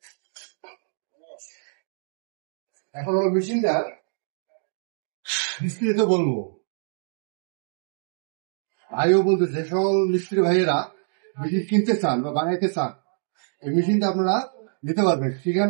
এখন হলো মেশিনটা বিস্তারিত বলবো। ভাইও বলতেছে, যে সকল মিস্ত্রি ভাইয়েরা মেশিন কিনতে চান বা বানাইতে চান, এই মেশিনটা আপনারা নিতে পারবেন।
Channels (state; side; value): silent; left; digital silence